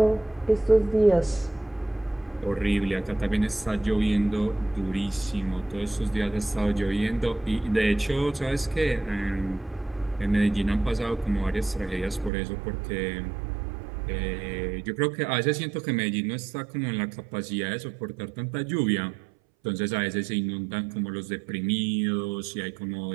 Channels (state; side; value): drops out; left; at 12.3 s